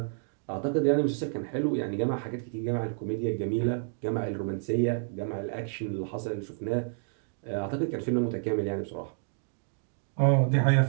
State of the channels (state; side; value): silent; left; digital silence